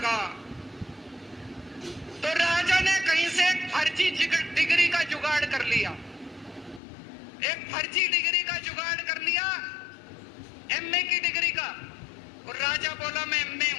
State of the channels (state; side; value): drops out; right; at 6.8 s